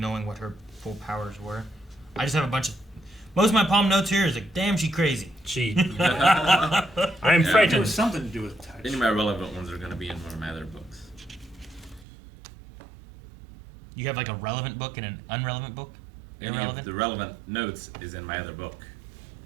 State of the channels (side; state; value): left; drops out; at 12.1 s